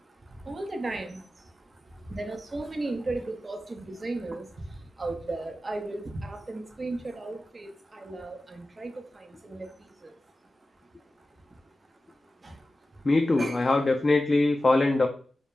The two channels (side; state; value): both; normal; correlation 0.94